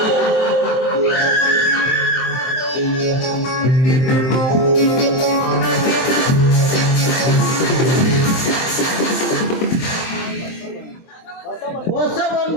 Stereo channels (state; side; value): late; right; 23 ms